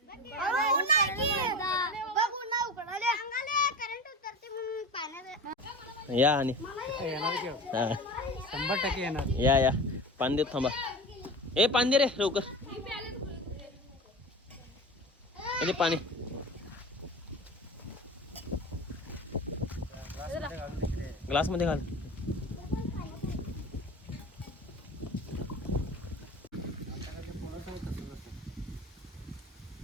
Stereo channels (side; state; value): both; normal; correlation 0.32